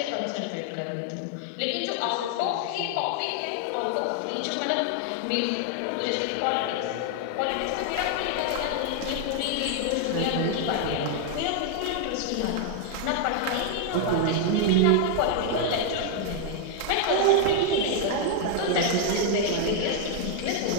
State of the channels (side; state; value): both; different; correlation 0.00